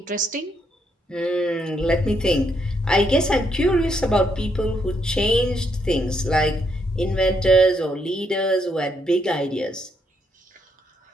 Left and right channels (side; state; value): both; normal; correlation 0.76